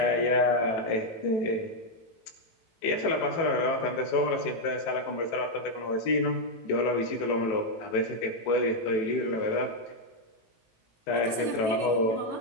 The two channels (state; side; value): late; right; 18 ms